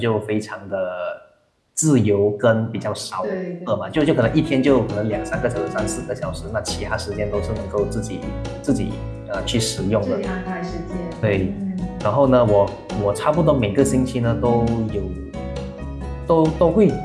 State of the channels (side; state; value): both; identical; correlation 1.00